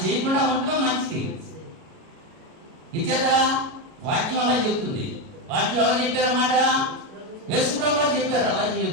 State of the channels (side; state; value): left; late; 37 ms